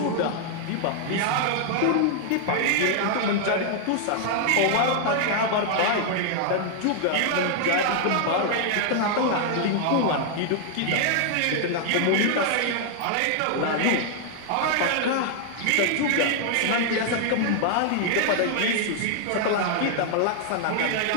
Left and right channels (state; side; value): different; both; correlation 0.00